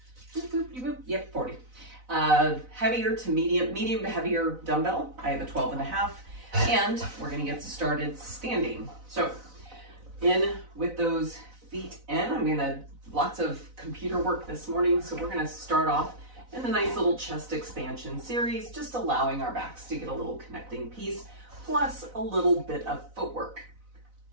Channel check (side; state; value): left; late; 4.0 ms